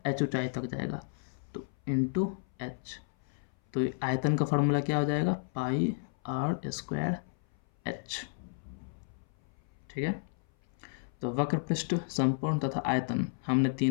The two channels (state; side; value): silent; right; 56 dB below the other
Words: एच ऊंचाई तक जाएगा, तो इनटू एच। तो आयतन का फार्मूला क्या हो जाएगा, पाई आर स्क्वायर एच। ठीक है, तो वक्र पृष्ठ, संपूर्ण तथा आयतन हमने